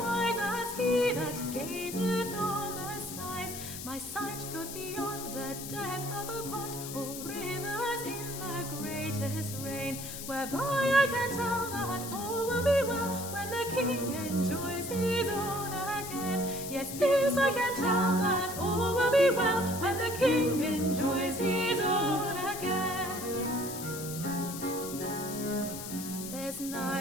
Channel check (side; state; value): left; noise; hiss, 9 dB below the sound